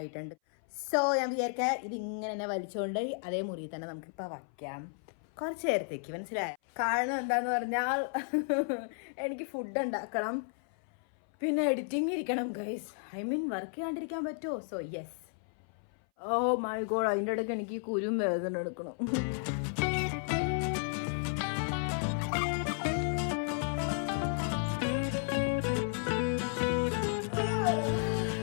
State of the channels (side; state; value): right; silent; 56 dB below the other